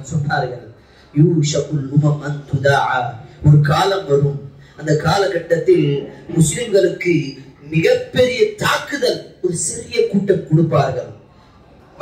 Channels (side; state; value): both; identical; correlation 1.00